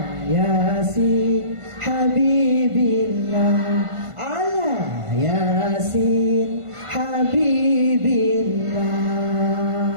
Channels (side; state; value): left; late; 1.5 ms